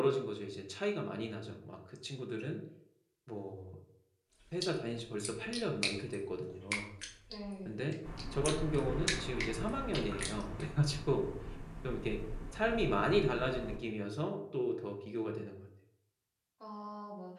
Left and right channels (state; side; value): identical; both; correlation 1.00